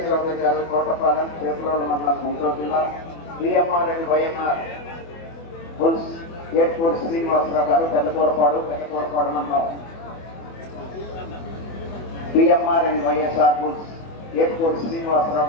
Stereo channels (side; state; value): right; late; 24 ms